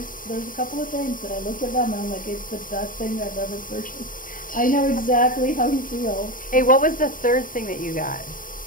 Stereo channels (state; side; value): late; right; 0.40 ms